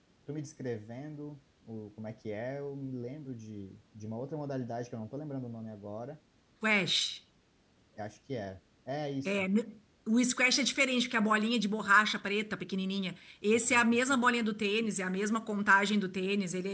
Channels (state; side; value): identical; both; correlation 1.00